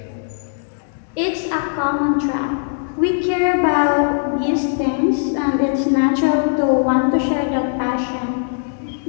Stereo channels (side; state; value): right; silent; digital silence